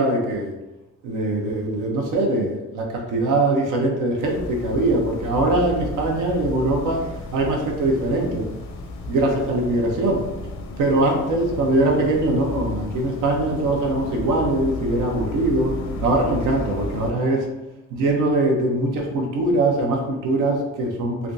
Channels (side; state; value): both; normal; correlation 0.27